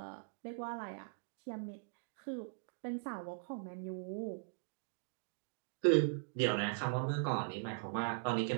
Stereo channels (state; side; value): silent; left; digital silence